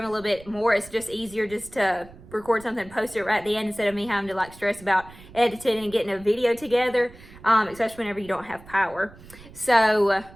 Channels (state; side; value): noise; right; rumble, 20 dB below the sound